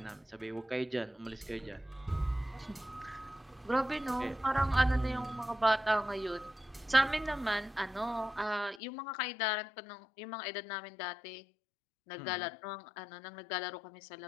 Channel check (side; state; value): right; drops out; at 8.8 s